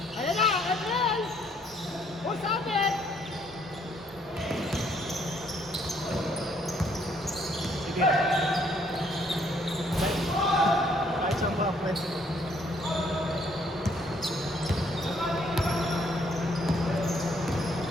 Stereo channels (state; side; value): normal; both; correlation 0.66